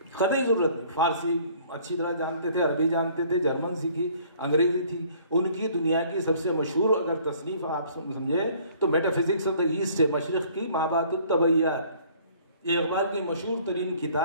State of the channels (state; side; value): inverted; both; correlation -0.56